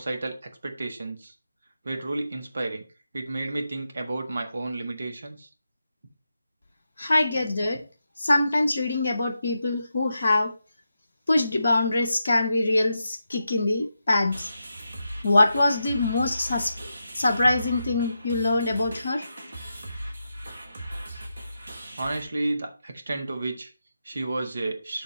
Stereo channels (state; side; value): inverted; both; correlation -0.87